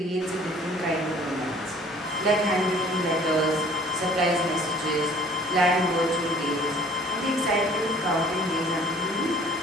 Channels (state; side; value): normal; both; correlation 0.52